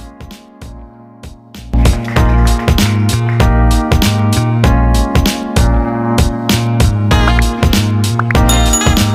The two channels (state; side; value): identical; both; correlation 1.00